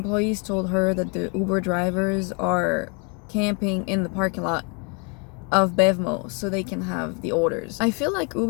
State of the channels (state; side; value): quieter; right; 34.5 dB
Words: told her that the Uber drivers are camping in the parking lot of Bevmo so they can have the orders. I feel like